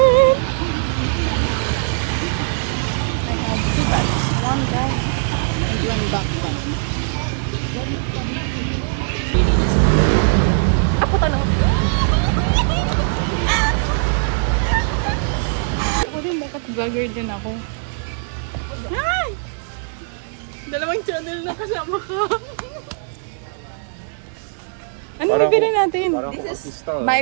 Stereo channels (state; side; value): silent; left; digital silence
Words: I have 2 bags. 1 bag and 1 backpack. Ako tanong. Ako din, dapat vlogger din ako. Ay! 2 channel na kasama ka. Ano bibili natin? This is my